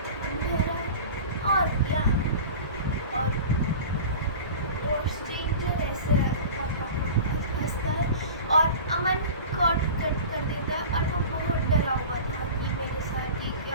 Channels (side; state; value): both; inverted; correlation -0.36